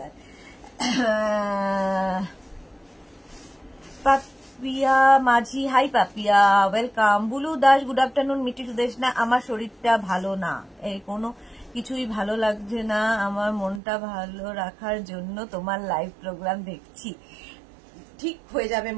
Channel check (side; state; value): left; drops out; at 13.8 s